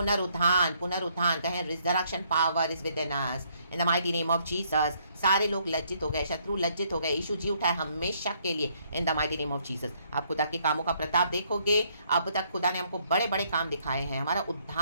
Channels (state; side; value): inverted; both; correlation -0.69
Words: पुनरुत्थान कहें। Resurrection power is within us. In the mighty name of Jesus. सारे लोग लज्जित हो गए, शत्रु लज्जित हो गए। यीशु जी उठा है हमेशा के लिए। इन the mighty name of Jesus. आप खुदा के कामों का प्रताप देखोगे। अब तक खुदा ने हमको बड़े बड़े काम दिखाए हैं, हमारा